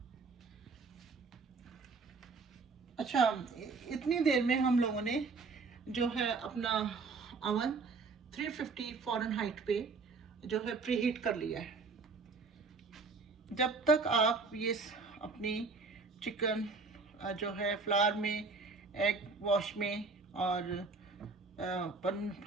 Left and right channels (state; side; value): quieter; left; 4.3 dB